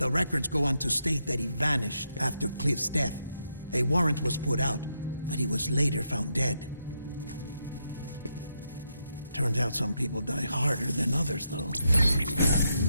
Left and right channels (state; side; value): inverted; both; correlation -0.80